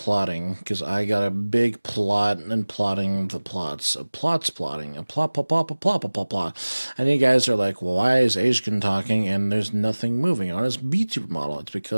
because I got a big plot and plotting the plots. A plot's plotting. A plot. And you guys are like, well, why is Ashkin talking and there's nothing moving on his Vtuber model? It's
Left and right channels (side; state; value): both; inverted; correlation -1.00